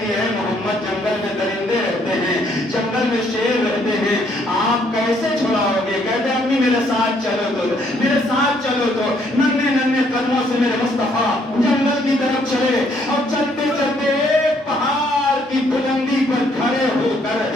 ہے محمد جنگل میں درندے رہتے ہیں، جنگل میں شیر رہتے ہیں، آپ کیسے چھڑاؤ گے؟ کہتے ہیں امی میرے ساتھ چلو تو، میرے ساتھ چلو تو۔ ننھے ننھے قدموں سے میرے مصطفیٰ جنگل کی طرف چلے، اور چلتے چلتے ایک پہاڑ کی بلندی پر کھڑے ہو کر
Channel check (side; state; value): both; normal; correlation 0.68